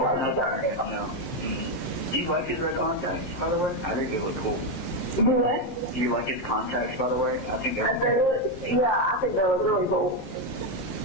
he's got it. No. Do you like his red contacts, by the way? I think they look cool. Do you like his contacts, by the way? I think they're yeah, I think they look really cool.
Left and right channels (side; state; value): right; late; 18 ms